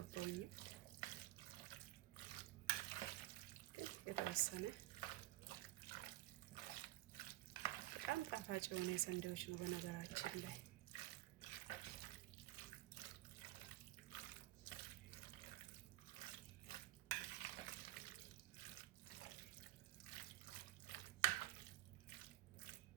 የተወሰነ በጣም ጣፋጭ የሆነ ሰንዴዎች ነው በነገራችን ላይ።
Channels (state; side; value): quieter; left; 16.8 dB